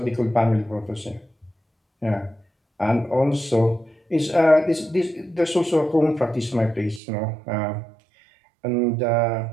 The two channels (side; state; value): left; drops out; at 7.0 s